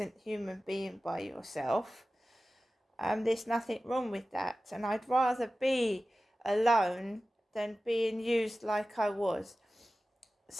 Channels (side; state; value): both; normal; correlation 0.95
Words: human being by yourself. There's nothing wrong with that. And I'd rather be alone than being used like I was.